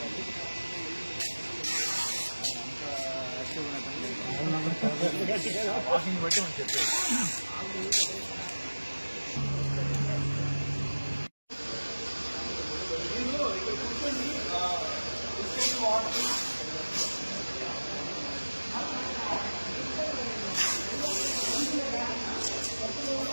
వాకింగ్ బట్టి మనం చెప్పేది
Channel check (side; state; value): both; inverted; correlation -1.00